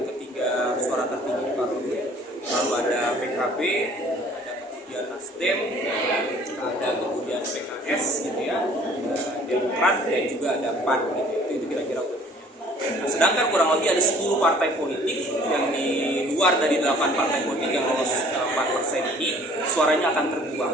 ketiga suara tertinggi di parlemen, lalu ada PKB, ada kemudian Nasdem, ada kemudian PKS gitu ya, ada Demokrat dan juga ada PAN gitu. Itu kira-kira urutannya. Nah, sedangkan kurang lebih ada 10 partai politik yang di luar dari 8 partai politik yang lolos 4% ini suaranya akan terbuang.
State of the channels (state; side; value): normal; both; correlation 0.53